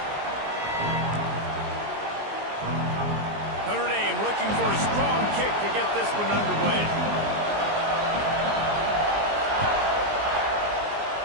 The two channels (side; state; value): left; late; 19 ms